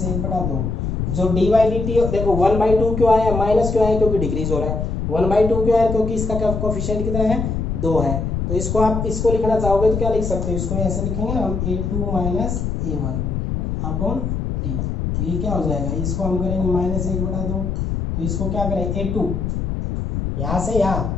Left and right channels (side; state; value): left; noise; rumble, 2 dB below the sound